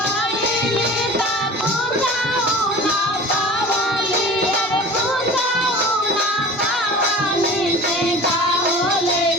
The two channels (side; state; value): both; normal; correlation 0.39